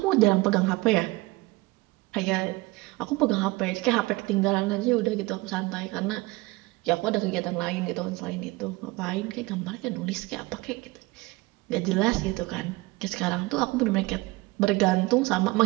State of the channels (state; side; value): quieter; left; 22.2 dB